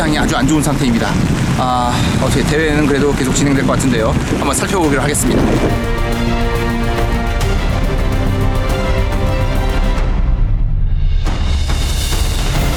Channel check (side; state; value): both; identical; correlation 1.00